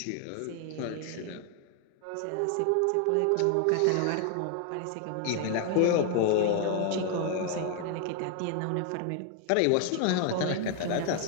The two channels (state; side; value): different; both; correlation 0.00